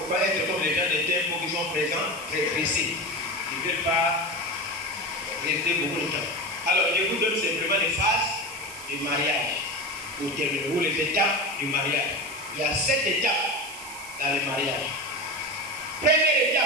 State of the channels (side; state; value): right; noise; hiss, 14 dB below the sound